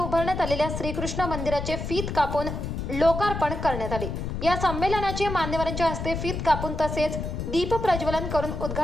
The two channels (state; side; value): noise; left; rumble, 4 dB below the sound